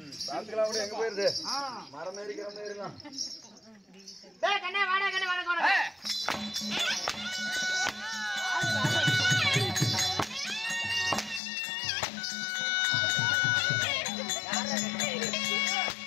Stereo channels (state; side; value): drops out; right; at 11.4 s